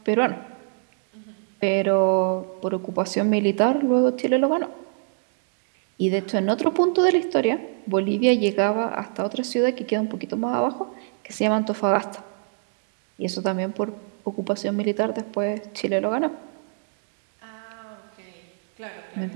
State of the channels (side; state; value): left; silent; 62 dB below the other